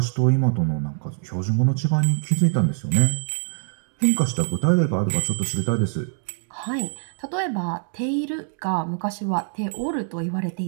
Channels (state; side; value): silent; left; digital silence